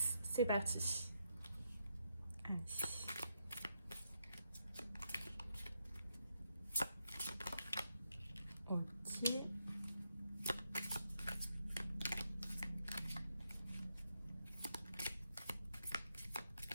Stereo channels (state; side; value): inverted; both; correlation -0.81